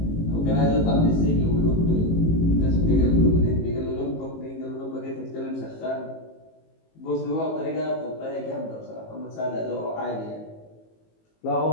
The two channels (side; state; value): right; late; 18 ms